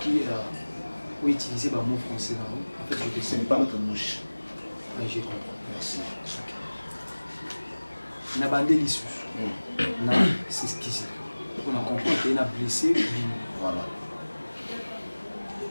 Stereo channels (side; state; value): both; inverted; correlation -1.00